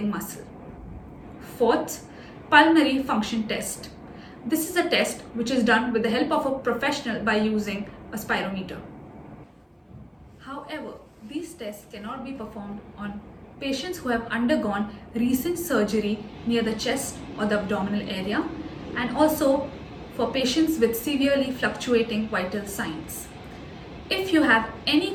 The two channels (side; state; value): both; identical; correlation 1.00